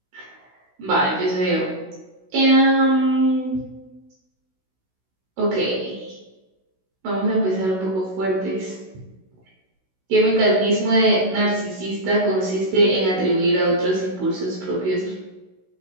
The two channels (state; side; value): late; left; 16 ms